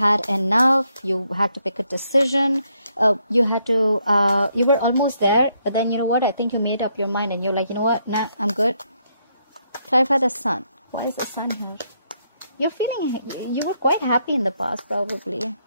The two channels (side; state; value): both; inverted; correlation -0.76